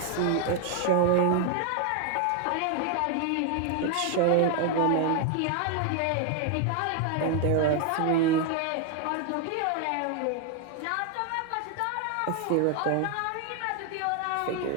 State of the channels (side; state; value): both; different; correlation 0.00